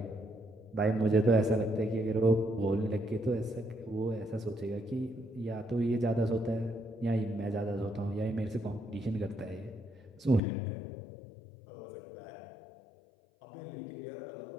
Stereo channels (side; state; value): right; drops out; at 10.4 s